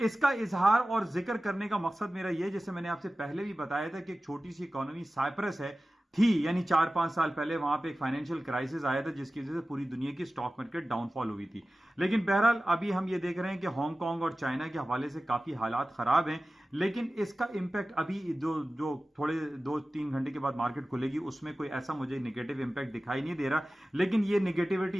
इजहार और जिक्र करने का मकसद मेरा यह, जैसे मैंने आपसे पहले भी बताया था कि एक छोटी सी इकोनॉमी साइप्रस है थी, यानी 4-5 साल पहले वहां पे एक फाइनेंशियल क्राइसिस आया था जिसकी वजह से पूरी दुनिया की स्टॉक मार्केट डाउनफॉल हुई थी। लेकिन बहरहाल अभी हम ये देख रहे हैं कि हांगकांग और चाइना के हवाले से काफी हालात खराब हैं, लेकिन इसका इंपैक्ट अभी जो थोड़े 2-3 घंटे के बाद मार्केट खुलेगी उसमें कोई ऐसा मुझे नेगेटिव इंपैक्ट दिखाई नहीं दे रहा। लेकिन ये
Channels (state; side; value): normal; both; correlation 0.96